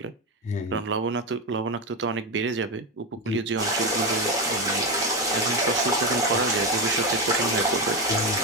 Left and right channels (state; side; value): normal; both; correlation 0.12